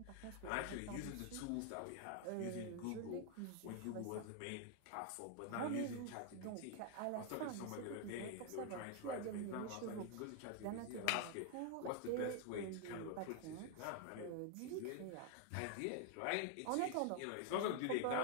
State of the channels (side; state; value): both; different; correlation 0.00